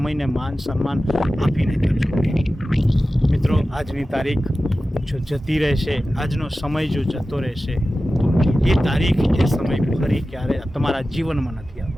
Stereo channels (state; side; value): normal; both; correlation 0.95